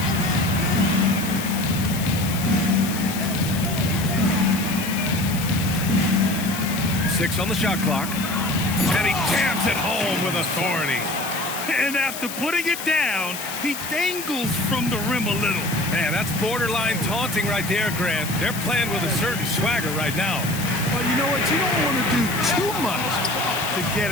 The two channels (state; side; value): noise; left; hiss, 9 dB below the sound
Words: Six on the shot clock. And he jams it home with authority. And after putting it down, he dangles from the rim a little. Man, that's borderline taunting right there, Grant. They're playing with a certain swagger right now. Well, you know what? You don't want to do too much to get